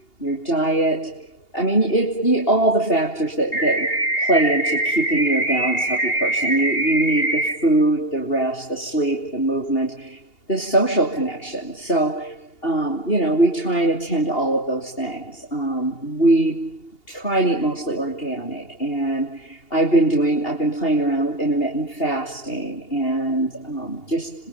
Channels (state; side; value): late; right; 2.8 ms